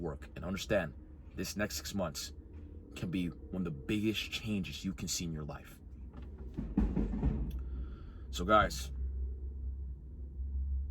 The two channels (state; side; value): identical; both; correlation 1.00